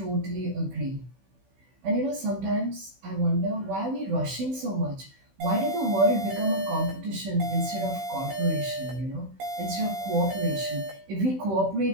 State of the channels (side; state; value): left; late; 16 ms